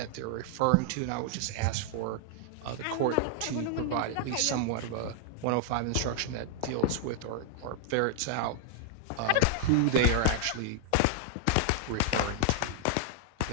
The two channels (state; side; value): different; both; correlation 0.00